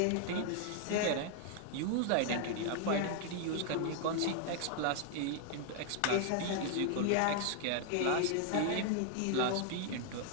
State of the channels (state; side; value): different; both; correlation 0.00